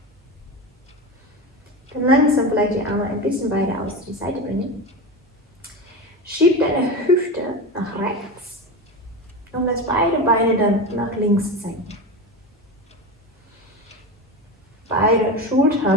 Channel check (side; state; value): both; normal; correlation 0.23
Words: Dann langsam vielleicht die Arme ein bisschen weiter aus die Seite bringen. Schieb deine Hüfte nach rechts und lass beide Beine dann nach links senken. Beide